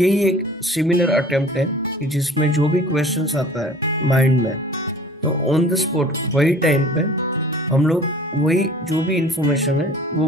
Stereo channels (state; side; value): normal; both; correlation 0.46